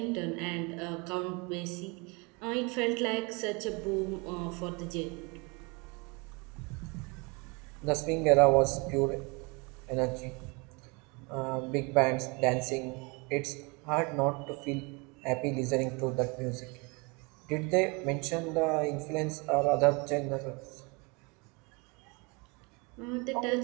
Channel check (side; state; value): left; quieter; 29.3 dB